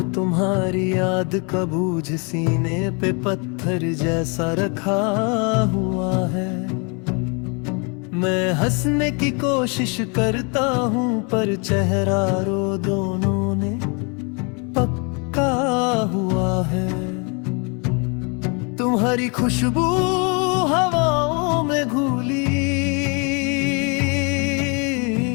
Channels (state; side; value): quieter; right; 33.6 dB